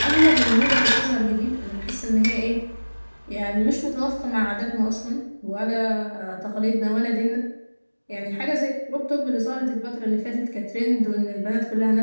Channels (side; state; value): both; inverted; correlation -1.00